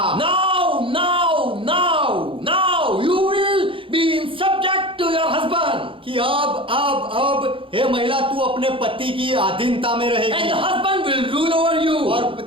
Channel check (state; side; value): late; left; 0.25 ms